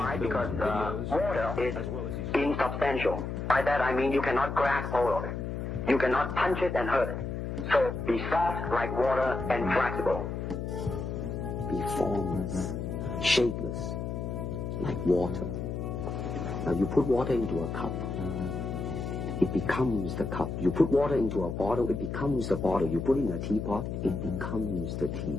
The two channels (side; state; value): left; noise; hum, 4 dB below the sound